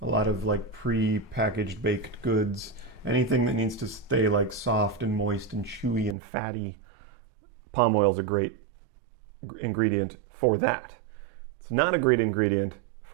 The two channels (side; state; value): left; drops out; at 6.2 s